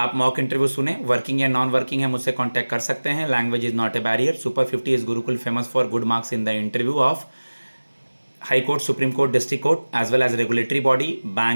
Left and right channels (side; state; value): both; inverted; correlation -1.00